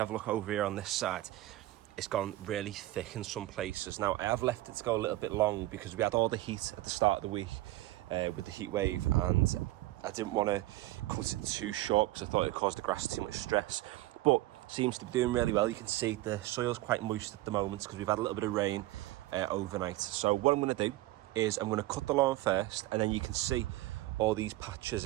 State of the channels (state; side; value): quieter; left; 17.0 dB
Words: a look over here on this side, it's gone really thick in some places. Now, I have left it to go a little bit long because we had all the heat at the start of the week with the heat wave, and I didn't want to cut it too short because I thought it caused the grass too much stress. But it seems to be doing really well. You can see the soil's quite moist at the moment because we've had a little bit of rain overnight. So what I'm going to do is I'm going to cut the lawn first, and then you can see all these patches